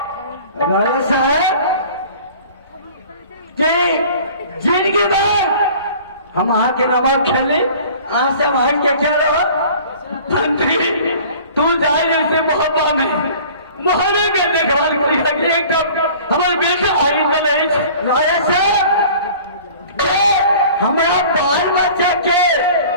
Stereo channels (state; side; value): inverted; both; correlation -0.46